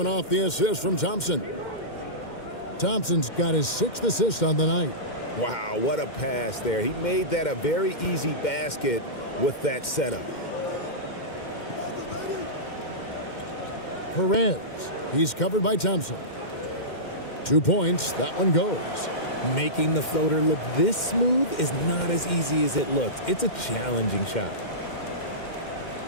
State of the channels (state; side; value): late; right; 2.1 ms